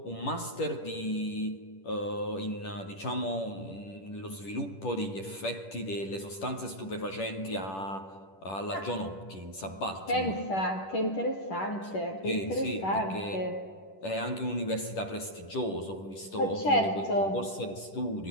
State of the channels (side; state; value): right; late; 10 ms